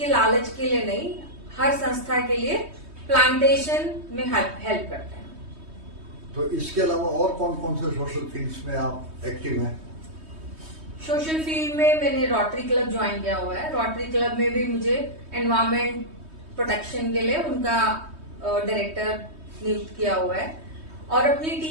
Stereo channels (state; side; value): late; left; 3.2 ms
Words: लालच के लिए नहीं, हर संस्था के लिए प्लांटेशन में हेल्प करते हैं। तो इसके अलावा और कौन कौन से सोशल फील्ड्स में आप एक्टिव हैं? सोशल फील्ड में मैंने रोटरी क्लब ज्वाइन किया हुआ है। रोटरी क्लब में भी मुझे एनवायरमेंट प्रोटेक्शन के लिए उनका डायरेक्टर नियुक्त किया हुआ है। और अपनी